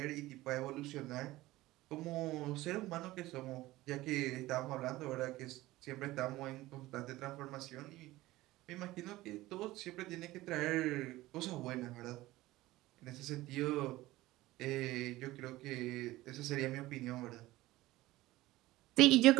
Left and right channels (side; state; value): left; quieter; 17.8 dB